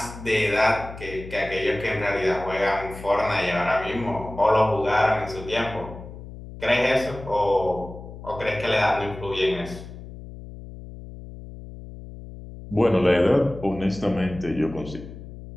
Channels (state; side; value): noise; left; hum, 14 dB below the sound